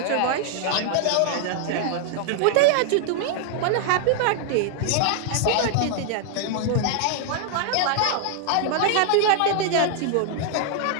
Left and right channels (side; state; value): both; different; correlation 0.00